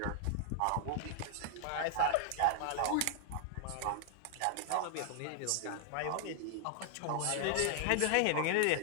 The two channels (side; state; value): both; different; correlation 0.00